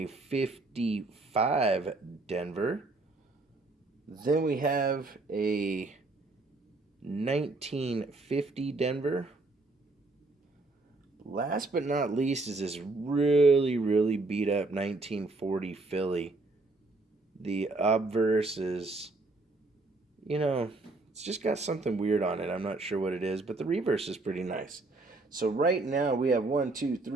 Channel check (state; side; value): quieter; left; 3.2 dB